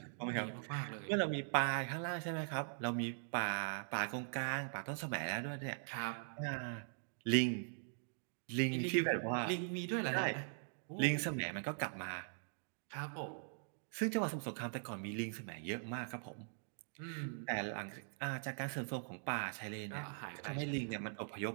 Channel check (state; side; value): silent; left; digital silence